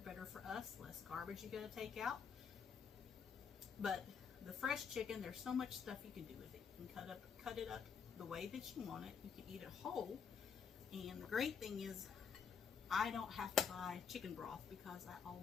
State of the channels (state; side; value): quieter; right; 6.5 dB